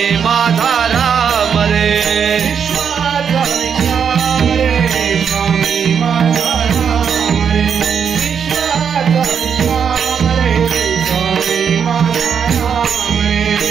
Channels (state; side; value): quieter; left; 7.2 dB